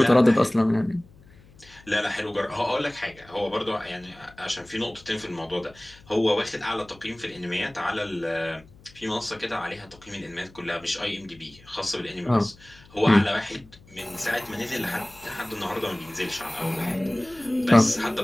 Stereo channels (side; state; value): left; noise; hum, 24 dB below the sound